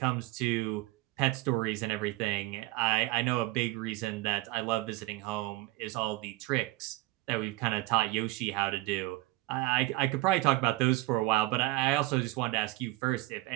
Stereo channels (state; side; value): quieter; left; 19.7 dB